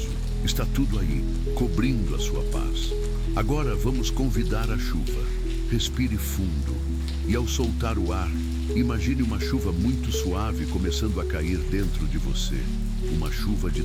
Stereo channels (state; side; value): identical; both; correlation 1.00